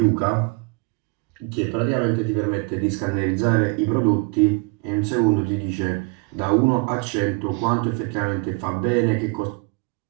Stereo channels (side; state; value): left; quieter; 29.2 dB